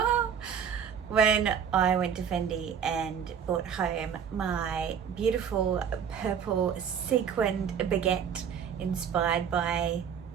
when I went to Fendi and brought home my beautiful purple sequined baguette inspired by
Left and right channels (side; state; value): left; quieter; 7.7 dB